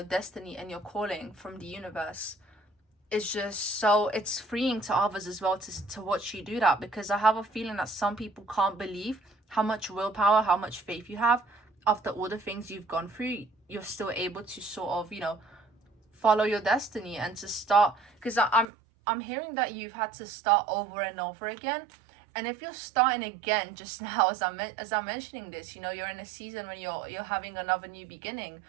destiny and your calling from the universe is just so, it's freeing to others as well to watch you do that. Because I have a feeling that some people can't believe how much willpower, how much faith you have. After all the things you've gone through, you're still able to sort of, you know, follow your destiny and to start. Because I'm hearing that you've had to start over and over again. And if you're starting again just now, as I'm mentioning this, you know, you're in a season when you're having another new beginning.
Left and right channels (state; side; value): drops out; left; at 18.7 s